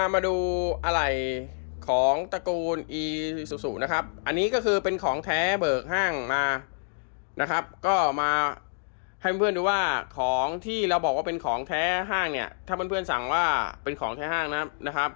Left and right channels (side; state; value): right; silent; digital silence